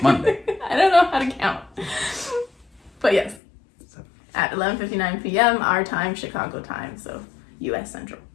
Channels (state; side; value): drops out; right; at 3.4 s